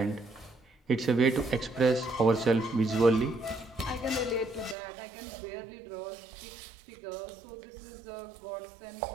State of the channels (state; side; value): drops out; left; at 4.8 s